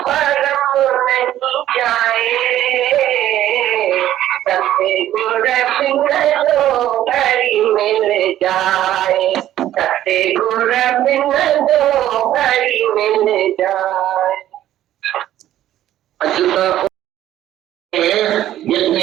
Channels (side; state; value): left; quieter; 12.7 dB